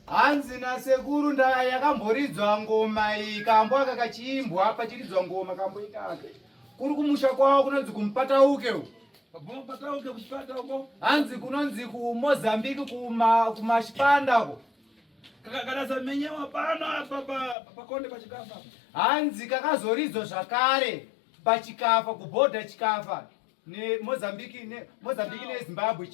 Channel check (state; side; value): drops out; right; at 17.6 s